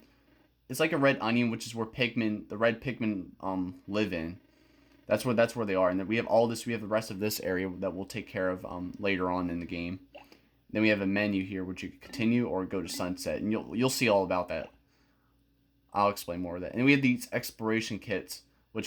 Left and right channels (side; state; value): both; identical; correlation 1.00